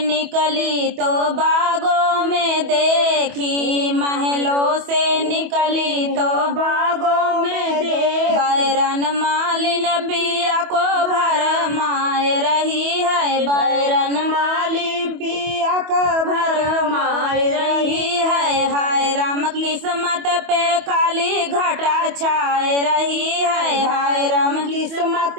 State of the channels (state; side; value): late; left; 25 ms